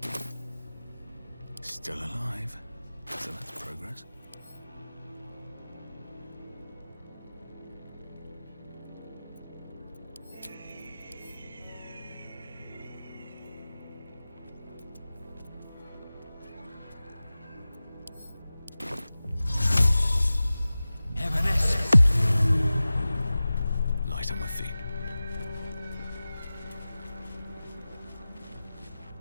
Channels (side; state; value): both; inverted; correlation -0.97